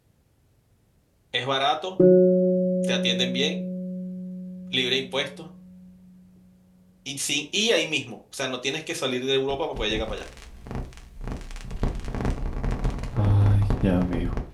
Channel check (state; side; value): identical; both; correlation 1.00